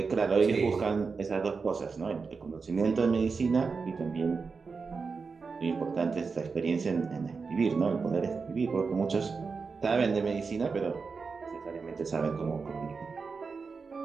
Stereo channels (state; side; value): quieter; left; 4.9 dB